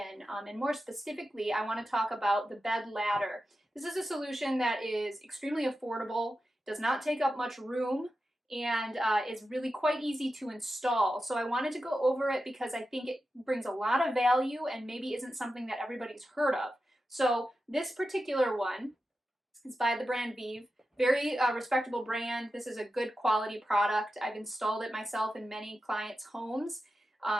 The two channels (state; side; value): normal; both; correlation 0.91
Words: and more specifically I want to talk about the bed ladder. This is a solution that is extremely affordable, does not take up much room, and is really quite easy to install. So I wanted to go over it because I think it brings a lot of value and maybe isn't something that everybody's heard of. So this particular one is by the brand Vive. Very respectable brand. This is a good quality product. I've installed it myself in many clients' homes.